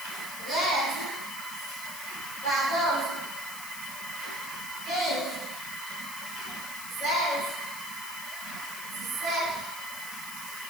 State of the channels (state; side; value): noise; left; hiss, 8 dB below the sound